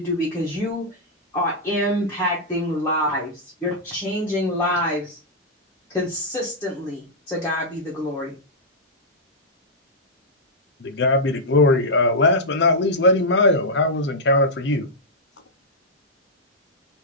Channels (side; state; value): both; normal; correlation -0.07